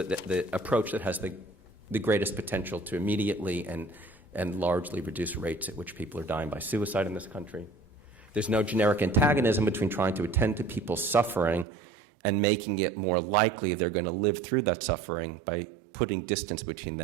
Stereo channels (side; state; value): left; drops out; at 11.7 s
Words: approach that has the greatest potential to immediately and largely reduce rates at which people are dying by suicide in this country. There's no generic antagonism between trying to attend to people's suffering and making it more likely they're going to live through that suffering by putting distance between